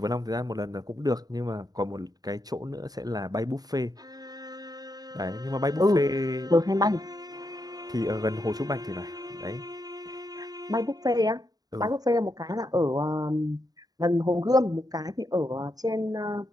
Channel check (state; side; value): late; left; 0.18 ms